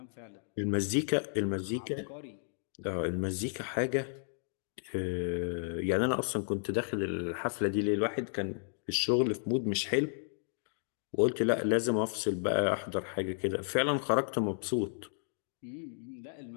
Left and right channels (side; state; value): right; silent; digital silence